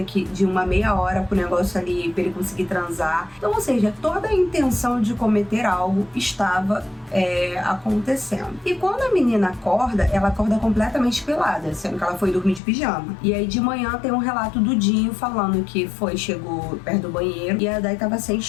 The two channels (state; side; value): drops out; right; at 12.6 s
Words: de uma meia hora pro negócio ali, pra ele conseguir transar. Então, ou seja, toda a intenção de cometer algo estava acontecendo. E quando a menina acorda, ela acorda completamente pelada, sendo que ela foi dormir de pijama. E aí de manhã tem um relato do Dinho falando que chegou perto do banheiro e a Dai tava sem